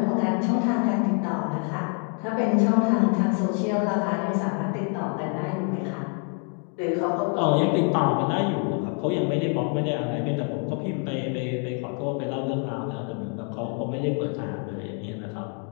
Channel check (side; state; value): right; quieter; 38.2 dB